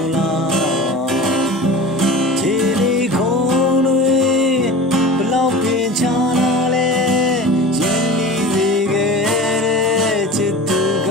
းလားခြေလေးခုံးတွေဘလောက်ပင်ချလာလဲရင်းနှီးစေခဲ့တဲ့ချစ်သူက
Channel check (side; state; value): both; normal; correlation 0.35